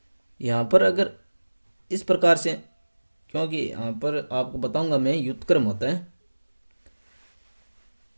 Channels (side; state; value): both; inverted; correlation -1.00